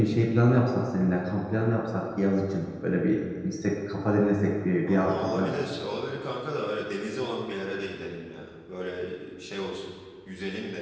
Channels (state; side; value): identical; both; correlation 1.00